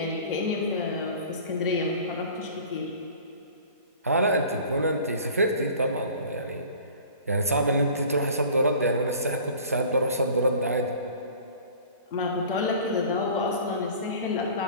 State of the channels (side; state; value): both; inverted; correlation -0.44